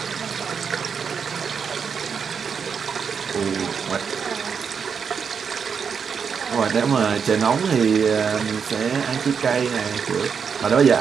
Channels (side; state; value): left; quieter; 6.5 dB